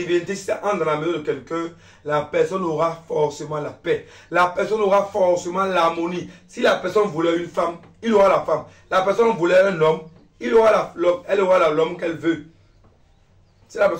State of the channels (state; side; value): identical; both; correlation 1.00